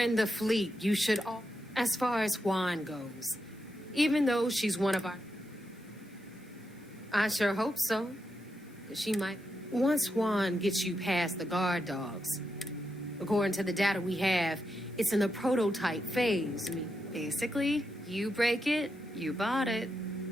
the fleet. You should all... As far as Juan goes, even though she's one of our... I sure hope so. Because she might... Once Juan gets you past the guard dogs, according to the data we have, it's in the prototype phase. I mean, basically, you break it, you bought it.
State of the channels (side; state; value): both; normal; correlation 0.85